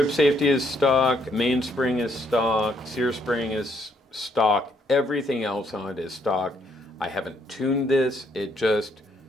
safety is stock, mainspring is stock, sear spring is stock, everything else on it is stock. I haven't tuned this,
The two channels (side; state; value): both; normal; correlation 0.71